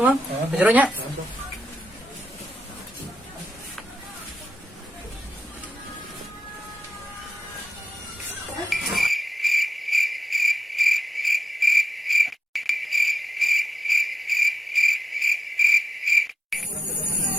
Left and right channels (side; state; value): both; normal; correlation 0.90